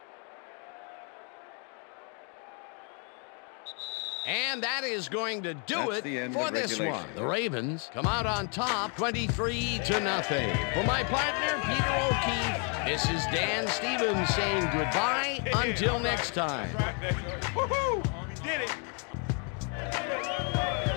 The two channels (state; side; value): quieter; right; 39.0 dB